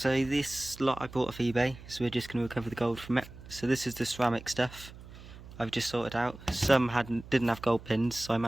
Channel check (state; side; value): noise; right; hum, 17 dB below the sound